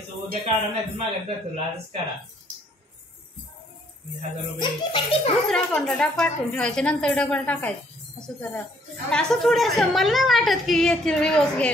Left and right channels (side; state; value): both; normal; correlation 0.65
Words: उद्या काढा नाही तर मागत जातो आजच काढा 1000 रुपये दुसऱ्या अकाउंटला पाठवून ठेवायचे नंतर डबल टाकायचं असं करा. असं थोडंसं मला नाही वाटत की येतील रिवर्स